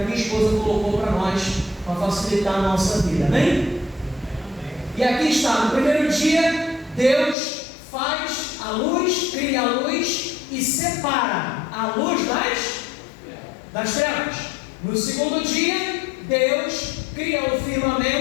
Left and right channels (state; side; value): drops out; right; at 7.4 s